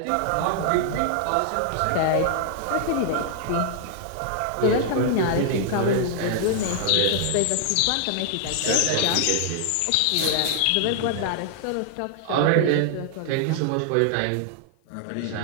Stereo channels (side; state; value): both; different; correlation -0.01